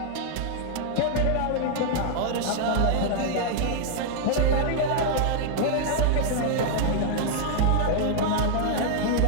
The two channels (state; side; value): different; both; correlation -0.01